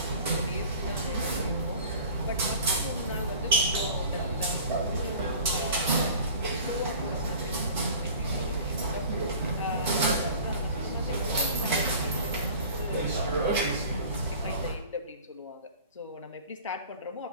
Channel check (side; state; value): both; inverted; correlation -0.43